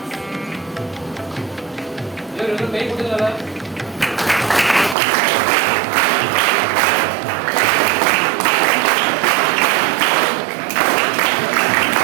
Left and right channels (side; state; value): left; drops out; at 5.0 s